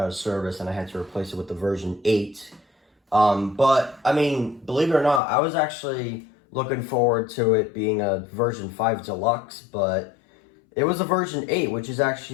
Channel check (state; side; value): drops out; right; at 5.2 s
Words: of service, and I had to replace it with the version 8. But, I mean, believe it or not, I was actually looking forward to it being a version 5 Deluxe, but it was a version 8, which is